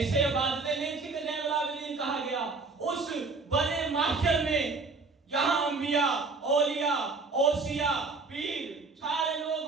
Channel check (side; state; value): left; quieter; 4.0 dB